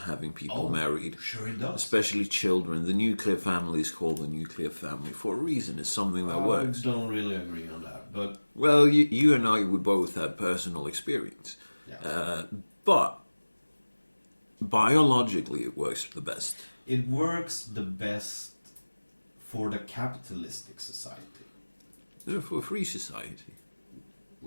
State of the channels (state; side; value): inverted; both; correlation -1.00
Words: having people married. Sure it does. Especially children. The nuclear family is called the nuclear family for a reason. It's something that works. I don't really agree on that, but... Well, you and I, we both have personal experience. Yeah. But biologically, it works the best. It works the best for the capitalistic society. For a free society.